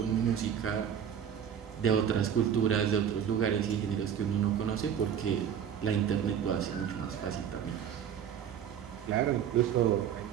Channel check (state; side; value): quieter; left; 8.6 dB